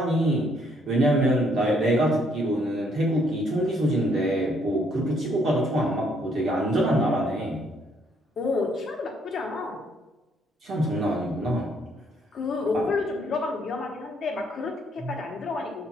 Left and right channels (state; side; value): normal; both; correlation 0.68